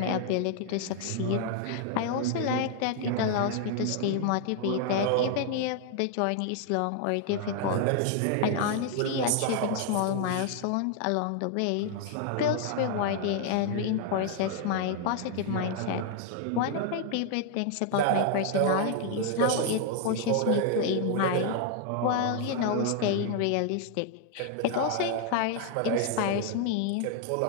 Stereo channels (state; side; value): different; both; correlation 0.00